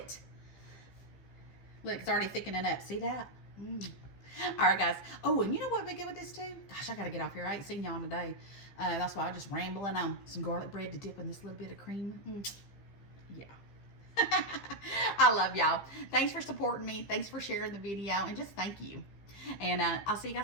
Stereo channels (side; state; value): right; late; 15 ms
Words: Look, it's already thickening up. See that? All right, guys. Oh, and you know what would be good with this too? Gosh, I got to get off here. I ain't seen y'all today. That's why I'm just rambling on. Some garlic bread to dip in this little bit of cream. Yeah. I love y'all. Thanks for supporting me. Thanks for sharing the video. And just thank you. And I'll see you